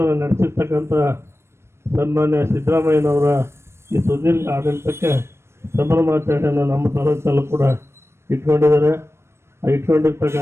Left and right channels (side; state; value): left; late; 0.13 ms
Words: ನಡೆಸಿರ್ತಕ್ಕಂಥ ಸನ್ಮಾನ್ಯ ಸಿದ್ದರಾಮಯ್ಯನವರ ಈ ಸುದೀರ್ಘ ಆಡಳಿತಕ್ಕೆ ಸಂಭ್ರಮಾಚರಣೆಯನ್ನು ನಮ್ಮ ತಾಲೂಕಲ್ಲೂ ಕೂಡ ಇಟ್ಕೊಂಡಿದ್ದಾರೆ.